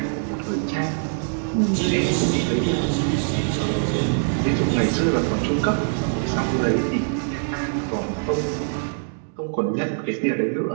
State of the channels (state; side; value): silent; left; digital silence